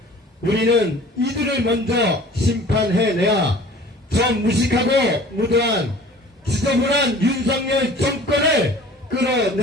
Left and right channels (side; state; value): both; normal; correlation 0.46